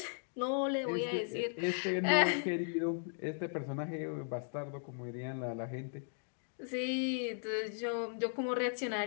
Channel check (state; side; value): silent; right; digital silence